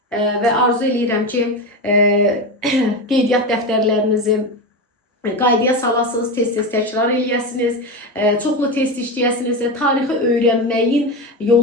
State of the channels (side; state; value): both; normal; correlation 0.18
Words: və arzu edirəm ki, qeydiyyat dəftərlərinizi qaydaya salasınız, tez-tez təkrar eləyəsiniz, çoxlu test işləyəsiniz. Tarixi öyrənməyin